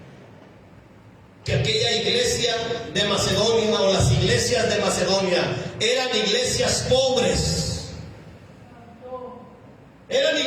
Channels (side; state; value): both; identical; correlation 1.00